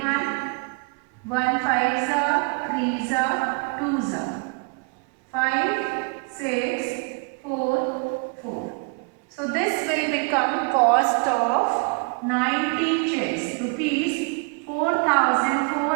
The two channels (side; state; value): left; quieter; 33.8 dB